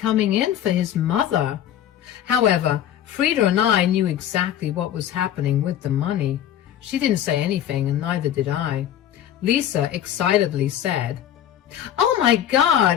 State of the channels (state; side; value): quieter; right; 10.8 dB